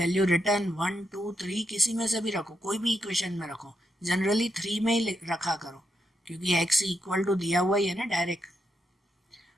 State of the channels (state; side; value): normal; both; correlation 0.82